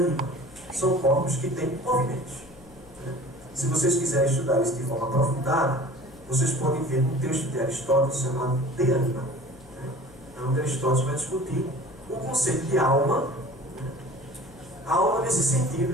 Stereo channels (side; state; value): left; noise; hum, 24 dB below the sound